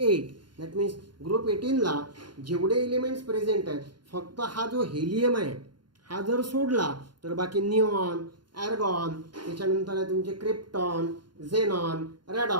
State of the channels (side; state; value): left; late; 0.71 ms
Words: दॅट मीन्स ग्रुप 18ला जेवढे एलिमेंट्स प्रेझेंट आहेत फक्त हा जो हेलियम आहे हा जर सोडला तर बाकी निऑन, ॲर्गॉन, त्याच्यानंतर आहे तुमचे क्रिप्टॉन, झेनॉन,